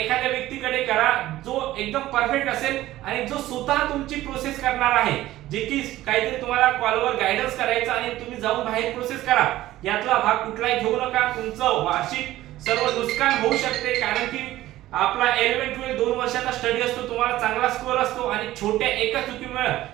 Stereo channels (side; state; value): left; quieter; 15.4 dB